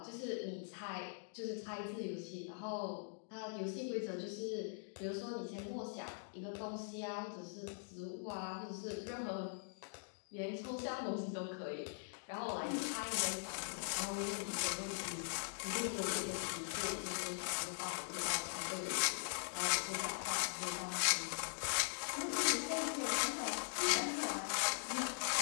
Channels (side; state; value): right; silent; digital silence